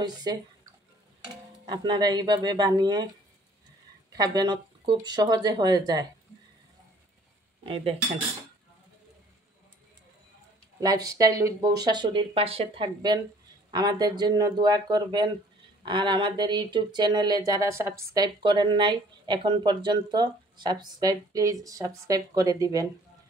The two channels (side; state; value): both; normal; correlation 0.56